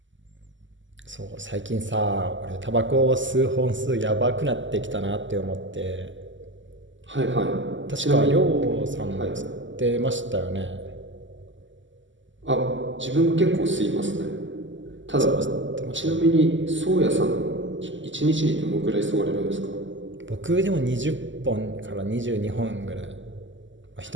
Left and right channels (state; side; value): late; left; 0.55 ms